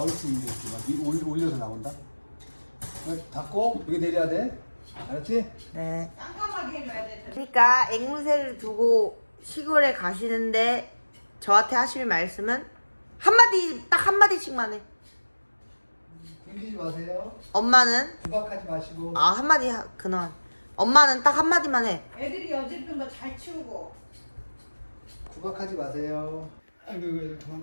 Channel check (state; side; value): inverted; both; correlation -1.00